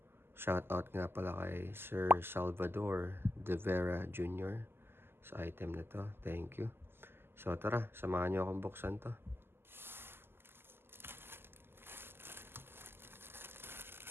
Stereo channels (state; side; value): late; left; 0.11 ms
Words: shout out nga pala kay Sir Salvador De Vera Jr. sa item na to. Thank you. So tara, samahan nyo akong buksan to.